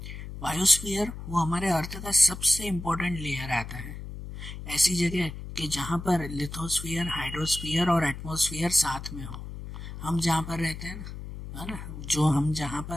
बायोस्फीयर वो हमारे अर्थ का सबसे इम्पोर्टेंट लेयर आता है। ऐसी जगह कि जहाँ पर लिथोस्फीयर, हाइड्रोस्फीयर और एटमॉस्फेयर साथ में हो। हम जहाँ पर रहते हैं ना, जो हम जहाँ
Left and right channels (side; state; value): left; noise; hum, 10 dB below the sound